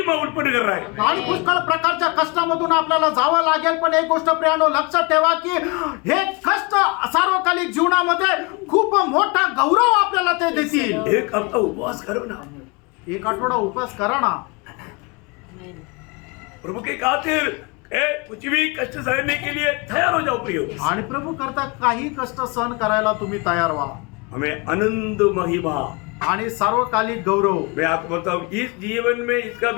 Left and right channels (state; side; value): quieter; right; 28.2 dB